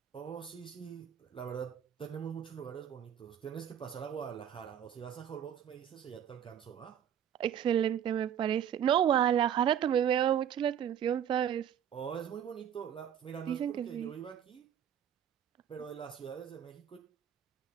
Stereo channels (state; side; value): quieter; left; 9.4 dB